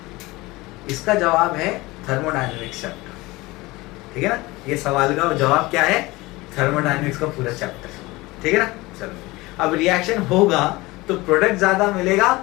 इसका जवाब है थर्मोडायनेमिक्स चैप्टर, ठीक है ना। ये सवाल का जवाब क्या है, थर्मोडायनेमिक्स का पूरा चैप्टर, ठीक है ना। चलो, अब रिएक्शन होगा तो प्रोडक्ट ज्यादा मिलेगा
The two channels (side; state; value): right; quieter; 21.2 dB